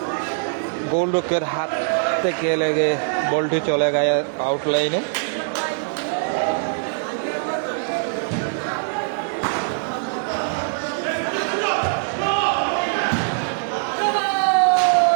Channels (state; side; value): silent; left; digital silence